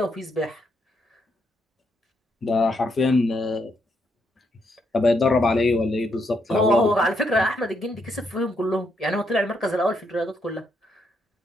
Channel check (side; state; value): both; normal; correlation 0.77